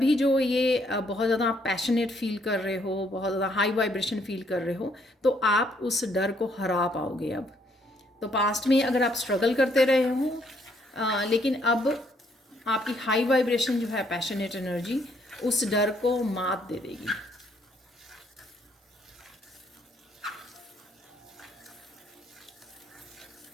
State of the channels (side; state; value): both; normal; correlation 0.69